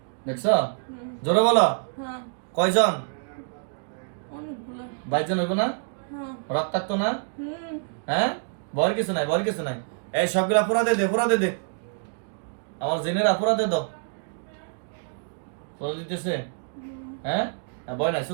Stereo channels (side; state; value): left; silent; digital silence